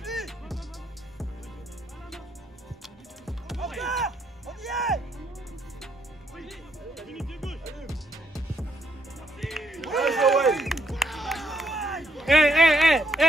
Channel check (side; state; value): both; normal; correlation 0.73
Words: lui. Encore. On y